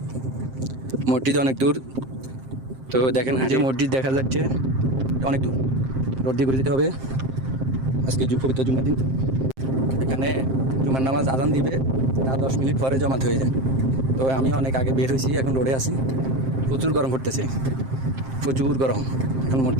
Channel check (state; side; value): late; left; 7.6 ms